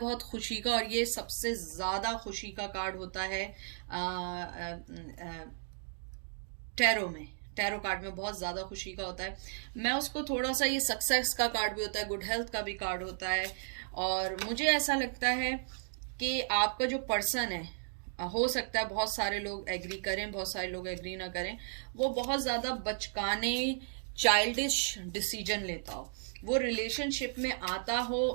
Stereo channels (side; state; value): left; silent; digital silence